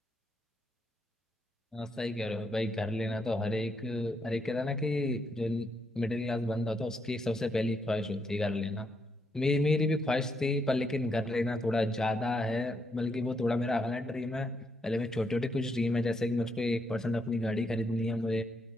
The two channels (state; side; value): normal; both; correlation 0.78